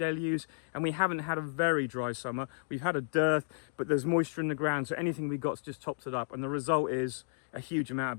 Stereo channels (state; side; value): silent; right; digital silence